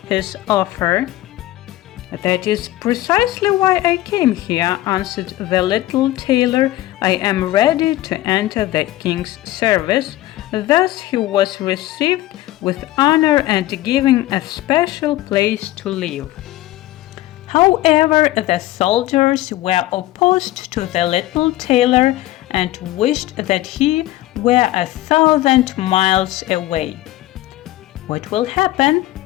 his offer. "That is precisely why I came here," answered the little tailor. "I am ready to enter the king's service." Thus he was received with honor and given a special place to live. However, the soldiers were opposed to the little tailor and wished that he were 1,000 miles away. "What will happen,"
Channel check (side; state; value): right; quieter; 16.0 dB